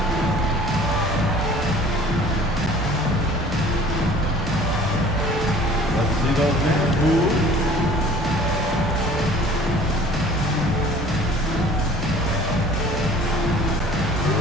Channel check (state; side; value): normal; both; correlation 0.49